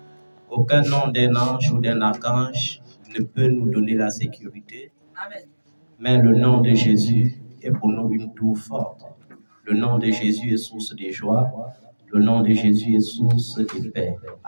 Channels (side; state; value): both; inverted; correlation -1.00